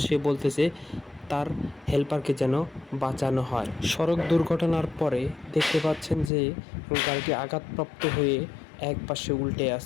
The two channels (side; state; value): right; drops out; at 6.3 s